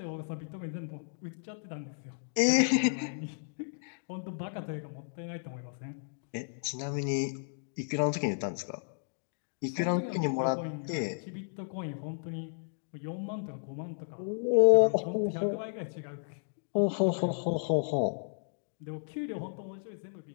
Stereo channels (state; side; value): silent; right; digital silence